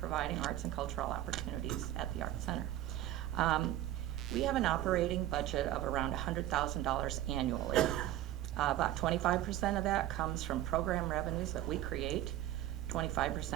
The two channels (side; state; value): left; quieter; 13.7 dB